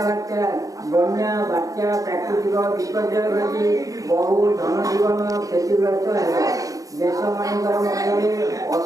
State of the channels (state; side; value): late; left; 0.17 ms